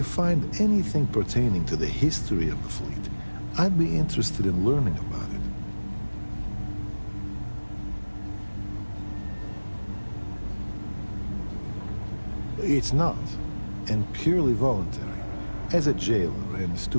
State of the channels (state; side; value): inverted; both; correlation -1.00